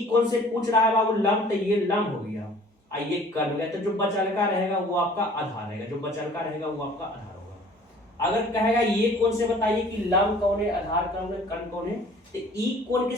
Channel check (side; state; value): both; normal; correlation 0.51